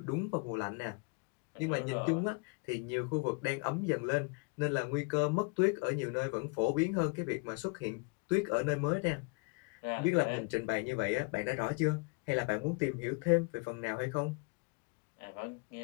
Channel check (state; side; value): quieter; right; 31.6 dB